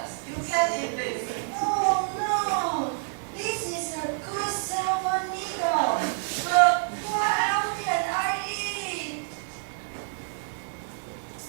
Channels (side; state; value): left; silent; digital silence